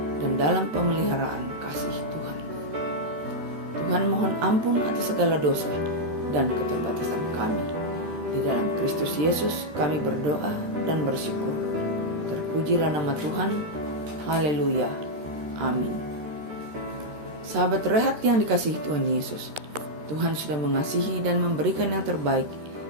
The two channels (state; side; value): late; left; 13 ms